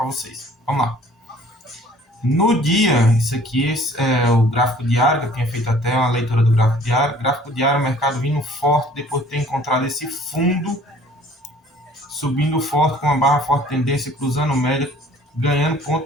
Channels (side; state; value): both; normal; correlation 0.54